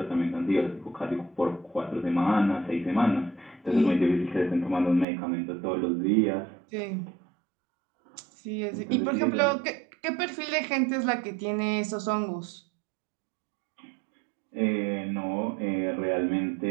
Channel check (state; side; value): drops out; left; at 5.1 s